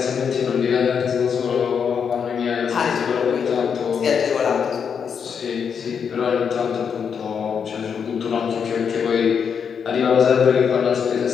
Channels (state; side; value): quieter; right; 6.9 dB